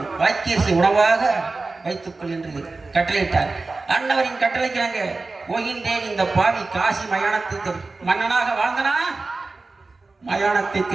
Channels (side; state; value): left; quieter; 3.6 dB